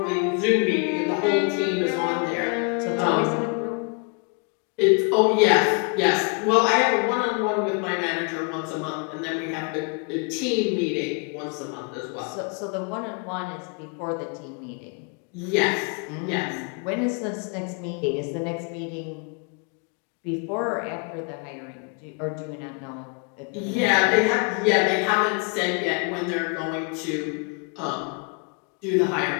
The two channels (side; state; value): right; quieter; 35.3 dB